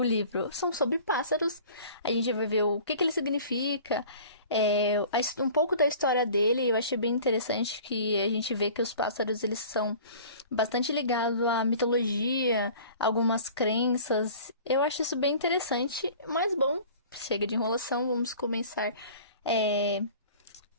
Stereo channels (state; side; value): inverted; both; correlation -0.45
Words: livro. São sobre pássaros, a gente vai ver o que ele significa, um pouco da história dele. Eu achei bem interessante que a gente vê que os pássaros eles são bastante ligados à mitologia, algumas crenças. Eu acho isso bem interessante, mas bom, chega de enrolação, vamos começar é,